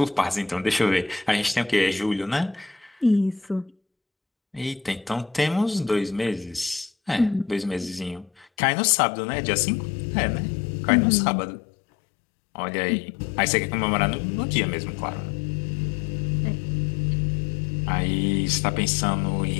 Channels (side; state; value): right; drops out; at 8.5 s